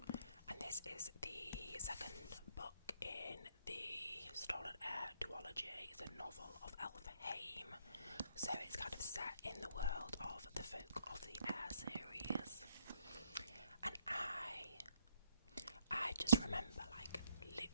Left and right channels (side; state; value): both; inverted; correlation -0.69